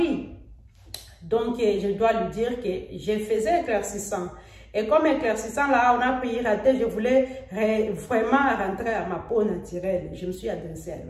Donc, je dois lui dire que je faisais éclaircissant. Et comme éclaircissant, là, on a piraté, je voulais vraiment rentrer à ma peau naturelle. Je me suis adressée à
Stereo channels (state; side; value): identical; both; correlation 1.00